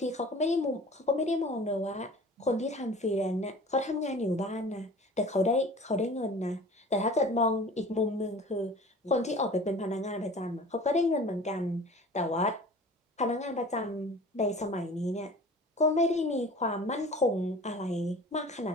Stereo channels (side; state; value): both; normal; correlation 0.43